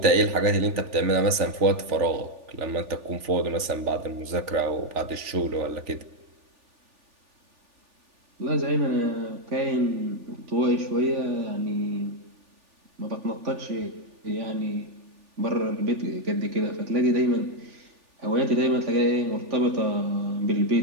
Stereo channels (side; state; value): left; late; 3.4 ms